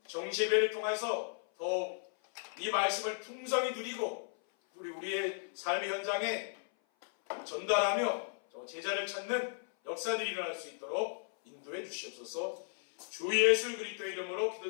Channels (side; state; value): right; silent; 54 dB below the other